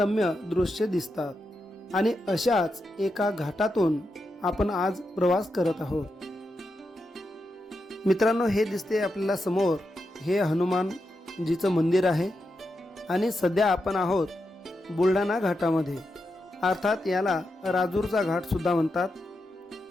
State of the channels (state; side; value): normal; both; correlation 0.86